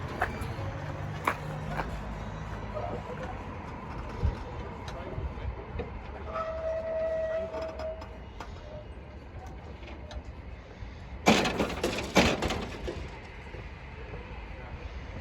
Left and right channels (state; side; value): identical; both; correlation 1.00